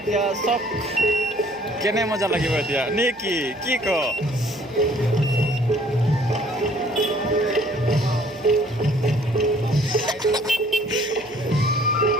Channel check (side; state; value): right; noise; hum, 29 dB below the sound